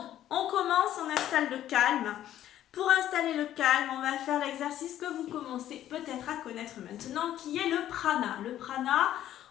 on commence, on installe le calme. Pour installer le calme, on va faire l'exercice que vous commencez peut-être à connaître maintenant, qui est le prana. Le prana,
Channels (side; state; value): right; quieter; 12.1 dB